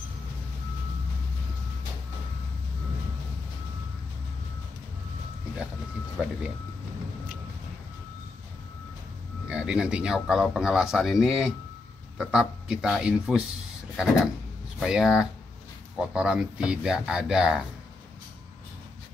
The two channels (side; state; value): right; quieter; 3.6 dB